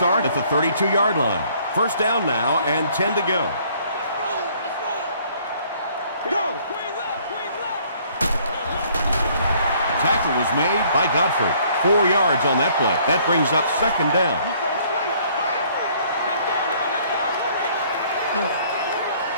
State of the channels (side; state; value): both; inverted; correlation -0.60